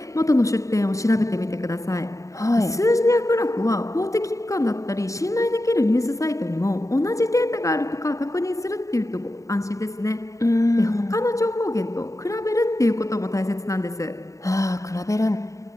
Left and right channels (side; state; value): right; late; 0.16 ms